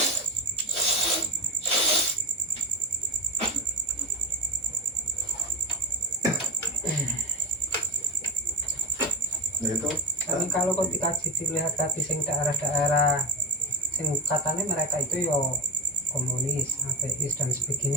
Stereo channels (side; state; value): both; normal; correlation 0.18